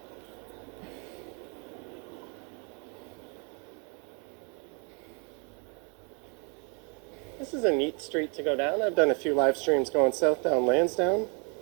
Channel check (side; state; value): left; quieter; 35.5 dB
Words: This is a neat street to go down. I've done a few live streams going south down Lansdowne.